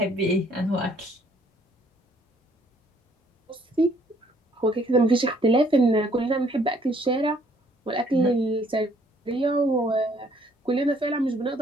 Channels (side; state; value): both; normal; correlation 0.64